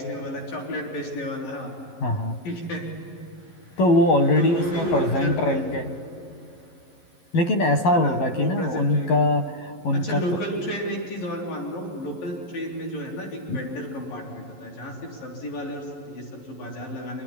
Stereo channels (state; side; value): late; right; 11 ms